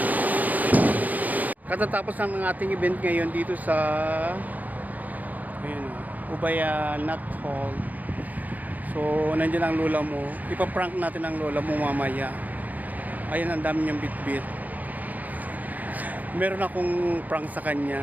Katatapos ng ating event ngayon dito sa ayun, Ubaya Nut Hall. So, nandiyan ang lola mo. Ipaprank natin ang lola mo mamaya. Ayan, ang dami niyang bitbit. Meron akong prank sa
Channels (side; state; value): left; late; 0.080 ms